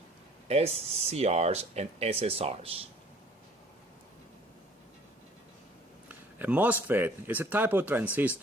SCRs, and SSRs. A MOSFET is a type of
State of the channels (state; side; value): normal; both; correlation 0.55